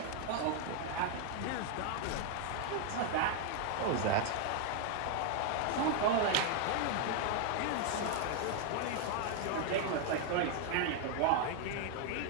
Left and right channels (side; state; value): both; different; correlation 0.01